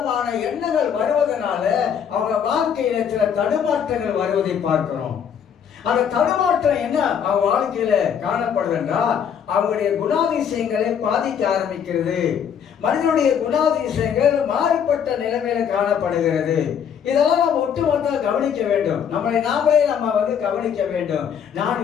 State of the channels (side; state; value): right; quieter; 8.0 dB